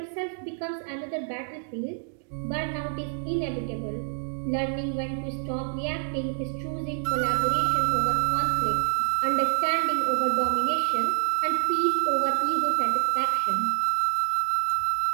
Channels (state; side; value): silent; left; digital silence